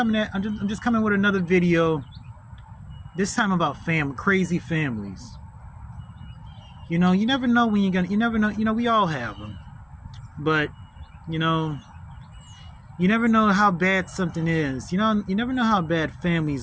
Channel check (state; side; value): identical; both; correlation 1.00